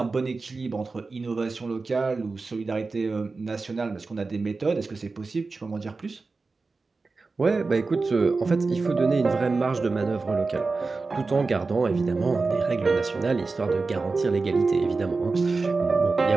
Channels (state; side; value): quieter; left; 4.0 dB